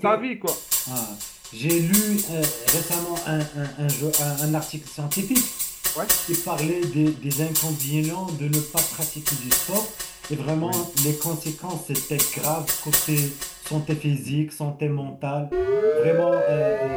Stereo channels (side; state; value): both; identical; correlation 1.00